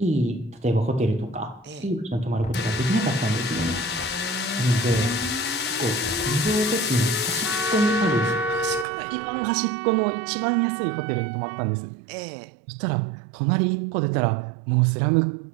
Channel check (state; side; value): drops out; left; at 8.8 s